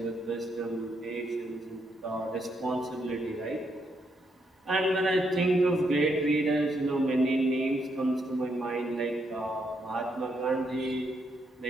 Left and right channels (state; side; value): normal; both; correlation 0.77